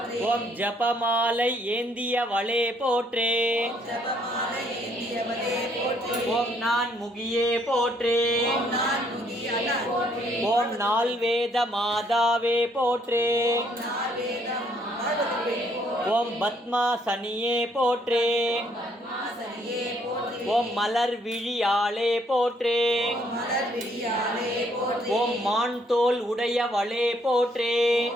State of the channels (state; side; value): normal; both; correlation 0.68